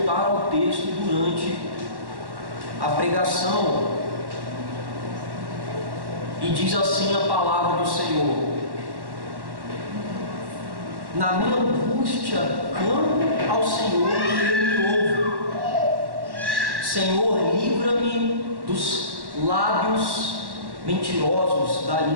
ao texto durante a pregação. E diz assim a palavra do Senhor: na minha angústia clamo ao Senhor e Ele me ouve. Senhor, livra-me dos lábios mentirosos, da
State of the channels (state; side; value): late; left; 1.1 ms